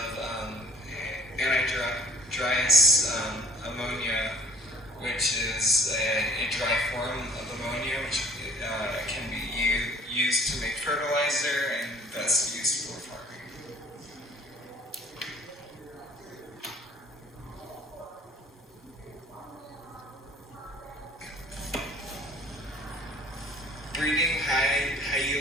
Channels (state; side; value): normal; both; correlation 0.53